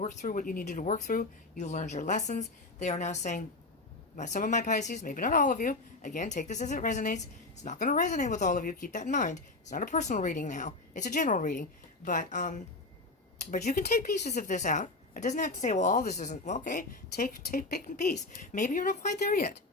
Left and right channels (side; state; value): right; quieter; 3.3 dB